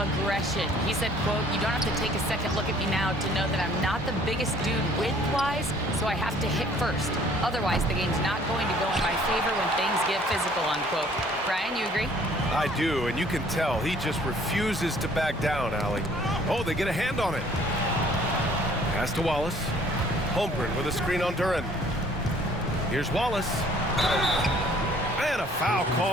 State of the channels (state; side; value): normal; both; correlation 0.57